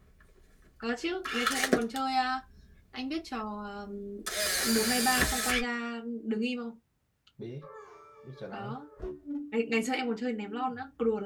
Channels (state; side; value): identical; both; correlation 1.00